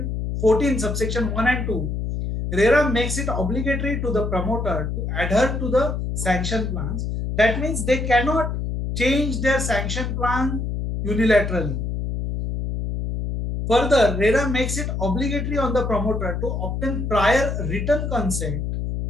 14 subsection 1 and 2, Rera makes it obligatory to the promoter to adhere to the sanction plans. That means they cannot change their sanction plan unilaterally. Further, Rera makes it obligatory on the promoter to obtain prior written consent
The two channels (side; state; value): left; noise; hum, 3 dB below the sound